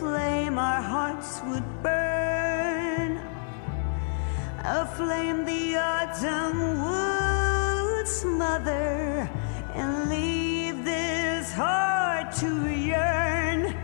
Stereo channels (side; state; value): right; silent; 60 dB below the other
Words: our hearts would burn. A flame the autumn would smother and leave this heart to yearn